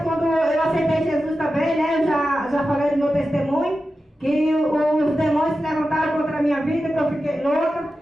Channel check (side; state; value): both; normal; correlation 0.92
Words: Quando eu aceitei Jesus também, né, eu já falei do meu testemunho, que os demônios se levantaram contra a minha vida, que eu fiquei louca,